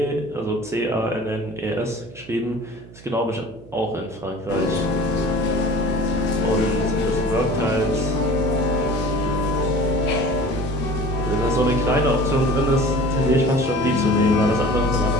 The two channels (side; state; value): right; noise; hum, 20 dB below the sound